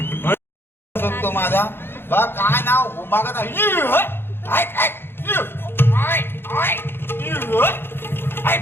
तो माझा बा काय नाव मागत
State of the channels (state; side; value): late; right; 0.11 ms